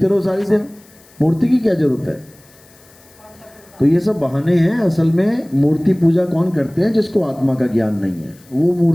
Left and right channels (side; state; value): left; noise; hiss, 27 dB below the sound